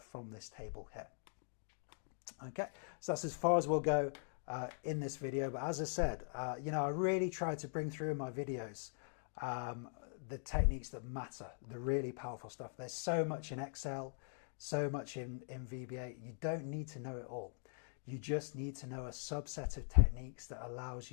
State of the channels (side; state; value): right; silent; digital silence